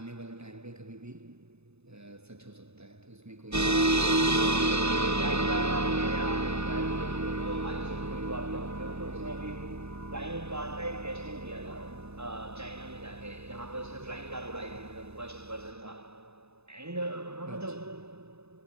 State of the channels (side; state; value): left; late; 0.80 ms